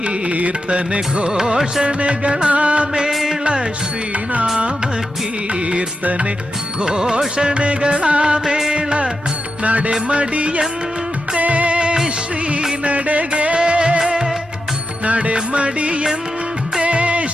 ಘೋಷಣೆಗಳ ಮೇಳ ಶ್ರೀನಾಮ ಕೀರ್ತನೆ ಘೋಷಣೆಗಳ ಮೇಳ ನಡೆಮಡಿಯಂತೆ ಶ್ರೀ ನಡೆಗೆ ನಡೆಮಡಿಯಂತೆ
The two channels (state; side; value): normal; both; correlation 0.88